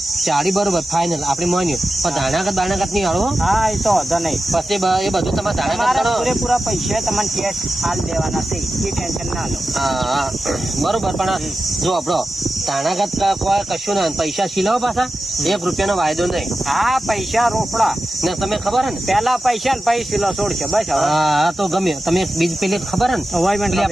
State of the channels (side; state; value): both; normal; correlation 0.92